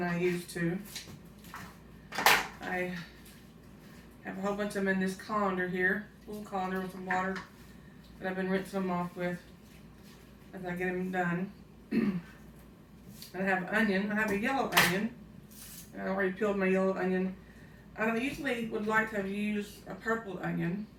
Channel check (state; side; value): identical; both; correlation 1.00